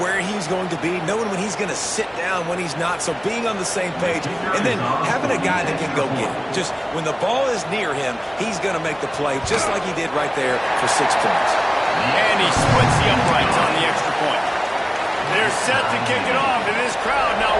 he's going to be, knowing when he's going to sit down, when he's not, so being on the same page, and then having a guy that can go get it. Just when the ball is near him, he's going to make the play, just like he did right there for 6 points. And he splits the uprights on the extra point. They're set to kick it off, and this crowd now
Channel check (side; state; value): both; identical; correlation 1.00